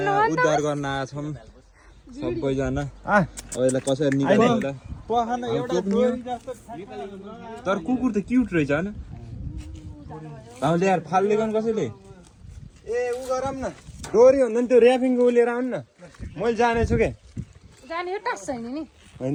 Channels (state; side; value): identical; both; correlation 1.00